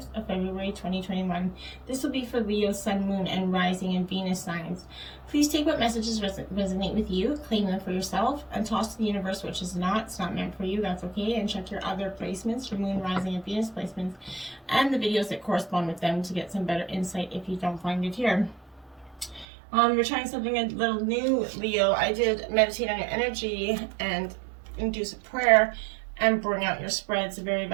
of February 2021. This will be for Leo, Sun, Moon, and Rising and Venus signs. Please take what messages resonate with you, claim them for yourself, and toss to the universe which is not. It's not meant for you, that's okay. And check your other placements, your Moon, Rising, and Venus placements, and the videos that correspond with them to get some better insight if you don't find it here. You're trying something a little new, Leo. I did meditate on your energy and induce a prayer and bring out your spread. It's a very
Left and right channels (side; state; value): left; drops out; at 19.5 s